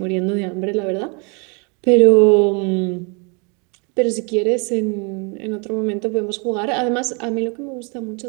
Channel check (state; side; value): quieter; left; 34.1 dB